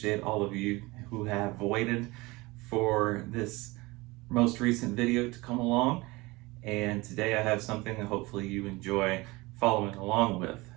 all of you who have waited for this most recent video to come along. And today I have something that hopefully you enjoy following along with.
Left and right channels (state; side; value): quieter; left; 22.6 dB